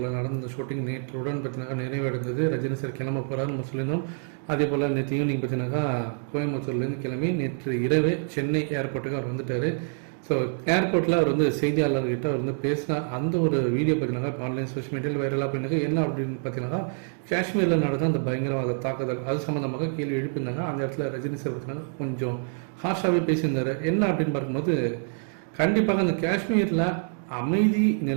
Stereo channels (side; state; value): left; silent; 60 dB below the other